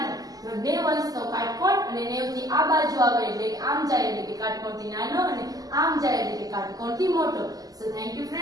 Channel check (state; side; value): late; left; 0.17 ms